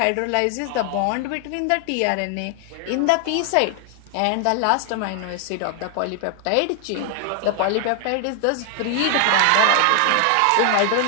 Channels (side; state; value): both; different; correlation 0.00